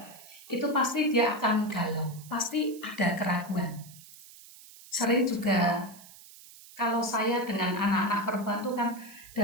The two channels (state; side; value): noise; right; hiss, 20 dB below the sound